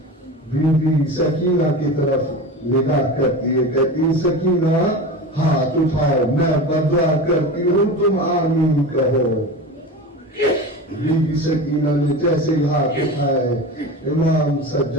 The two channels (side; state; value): both; normal; correlation 0.28